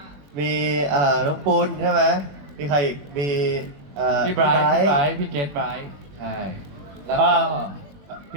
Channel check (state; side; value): late; left; 21 ms